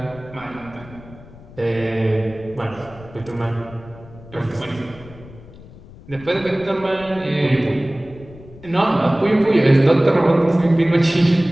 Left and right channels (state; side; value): noise; left; rumble, 20 dB below the sound